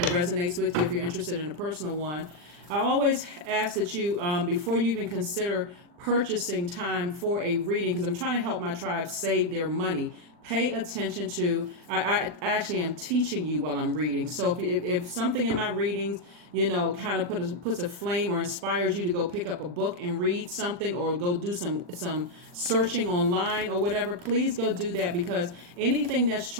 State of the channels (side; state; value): left; late; 40 ms